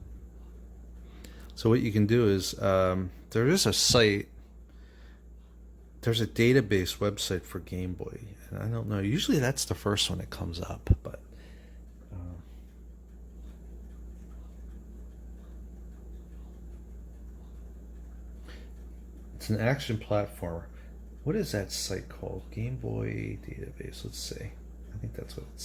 So what you can do is, there is a site, there's a database website for Game Boy. And I don't know, usually that's the first one that comes up, but it's an action platformer. What is that site called? Game Boy database. Let's see. I think that's what,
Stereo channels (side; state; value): both; identical; correlation 1.00